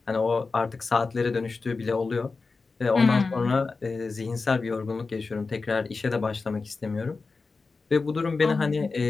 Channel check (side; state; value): right; quieter; 4.2 dB